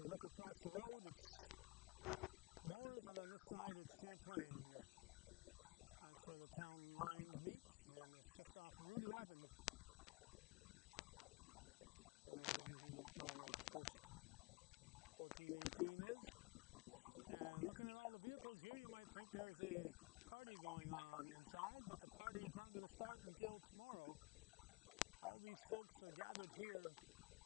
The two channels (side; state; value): right; quieter; 25.2 dB